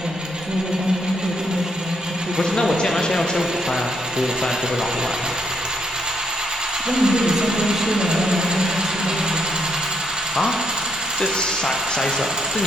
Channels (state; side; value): normal; both; correlation 0.75